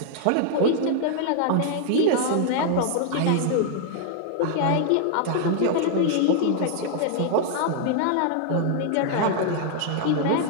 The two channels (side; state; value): both; different; correlation -0.01